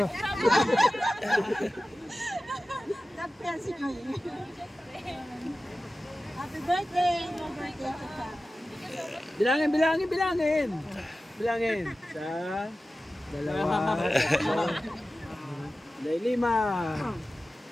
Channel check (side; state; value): both; normal; correlation 0.95